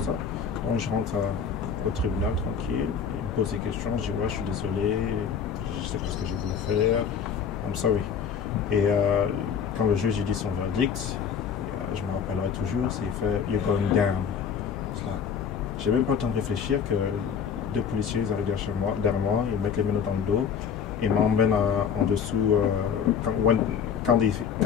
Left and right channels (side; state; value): right; quieter; 7.0 dB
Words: ça. Donc je rentre au tribunal tranquille, ils me posent des questions, je dis ouais, je suis désolé, je sais pas ce que j'ai voulu faire, I'm sorry. Et quand le juge dit son verdict, je me rappellerai toujours, c'est fait you're going down. J'ai même pas le temps de réfléchir que 2 policiers arrivent derrière moi, ils mettent les menottes dans le dos et m'emmènent en dessous. Quand